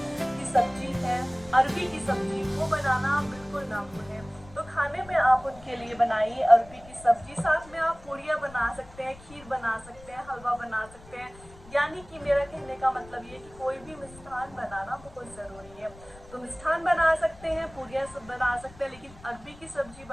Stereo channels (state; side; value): noise; left; rumble, 21 dB below the sound